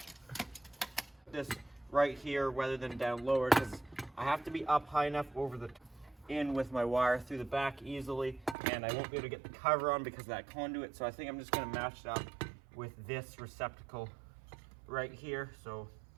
This right here rather than down lower, because I have to be up high enough over the in with my wire through the back easily, and I won't be able to get the cover on because of that conduit. So I think I'm just going to match it up with this receptacle right here. So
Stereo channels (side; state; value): left; drops out; at 8.6 s